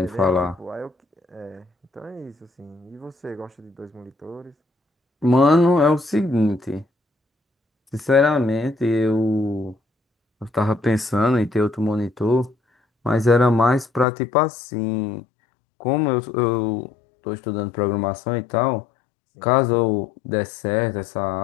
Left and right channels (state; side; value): drops out; right; at 14.1 s